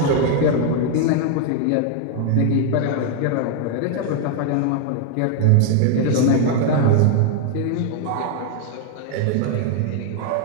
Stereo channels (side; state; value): both; different; correlation 0.00